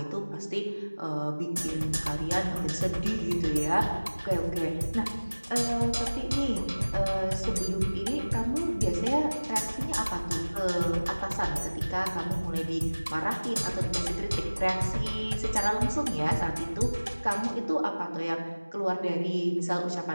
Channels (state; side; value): inverted; both; correlation -1.00